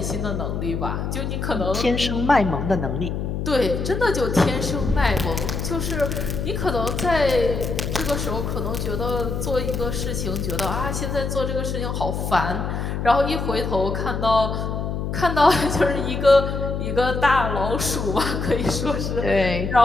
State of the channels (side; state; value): left; noise; hum, 3 dB below the sound